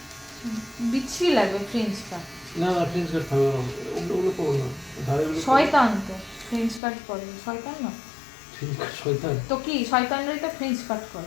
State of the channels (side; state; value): right; drops out; at 6.8 s